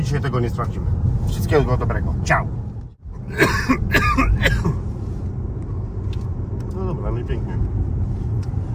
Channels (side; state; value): both; identical; correlation 1.00